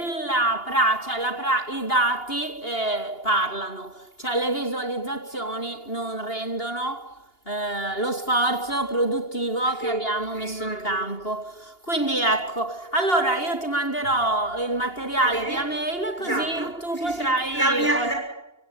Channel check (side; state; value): right; late; 2.8 ms